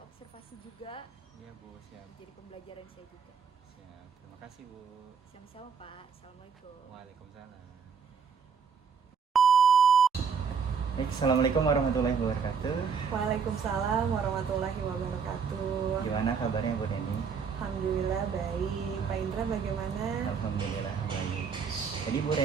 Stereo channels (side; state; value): left; quieter; 6.2 dB